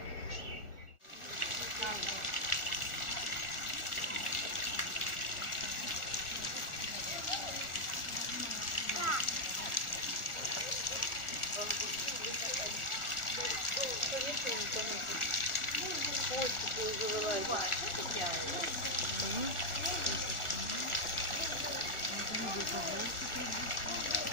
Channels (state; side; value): late; right; 1.4 ms